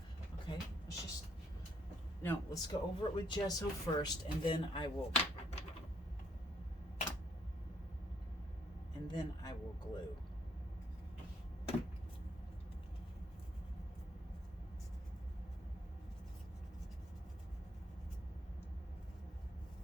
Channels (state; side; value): normal; both; correlation 0.70